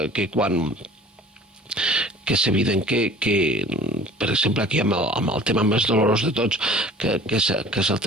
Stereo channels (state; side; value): normal; both; correlation 0.46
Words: quan que és evident que per exemple, aquí amb el tema més dolorós de tots, que és el